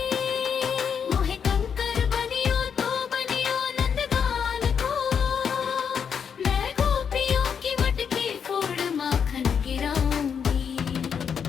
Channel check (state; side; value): quieter; right; 7.1 dB